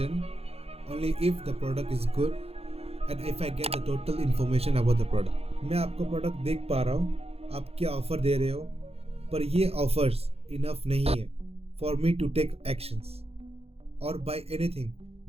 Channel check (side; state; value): left; late; 0.29 ms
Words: only if the product is good and if I get the total information about the product. मैं आपका प्रोडक्ट देख पा रहा हूँ, आप क्या ऑफर दे रहे हो, पर ये ऑफर्स इनफ नहीं है for me to take actions और बाय एनीथिंग,